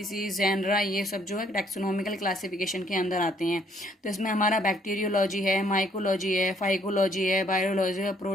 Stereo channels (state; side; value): normal; both; correlation 0.66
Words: जेनरा, ये सब जो है टैक्सोनॉमिकल क्लासिफिकेशन के अंदर आते हैं। तो इसमें हमारा बैक्टीरियोलॉजी है, माइकोलॉजी है, फाइकोलॉजी है, बायोलॉजी है,